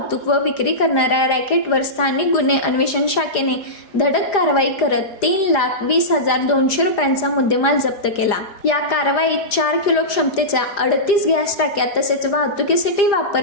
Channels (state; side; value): late; right; 5.0 ms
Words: व विक्री करणाऱ्या रॅकेटवर स्थानिक गुन्हे अन्वेषण शाखेने धडक कारवाई करत 3,20,200 रुपयांचा मुद्देमाल जप्त केला. या कारवाईत 4 किलो क्षमतेच्या 38 गॅस टाक्या तसेच वाहतुकीसाठी